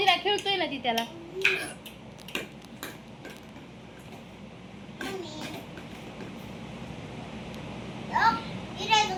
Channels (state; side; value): identical; both; correlation 1.00